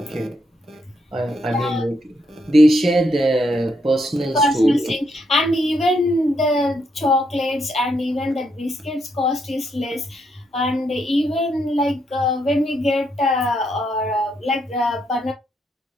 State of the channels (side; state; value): both; normal; correlation 0.77